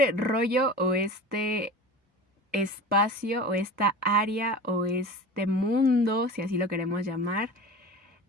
rollo o este espacio o esta área o este mundo, si así lo queremos llamar,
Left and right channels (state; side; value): normal; both; correlation 0.34